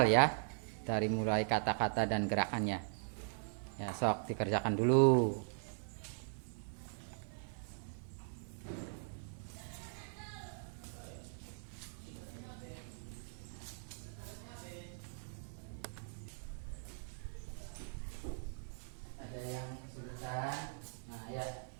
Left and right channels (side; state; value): left; silent; digital silence